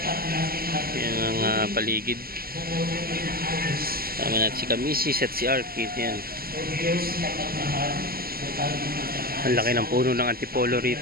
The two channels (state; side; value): late; left; 0.43 ms